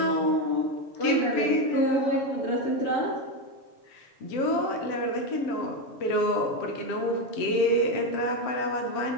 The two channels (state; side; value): late; right; 7.5 ms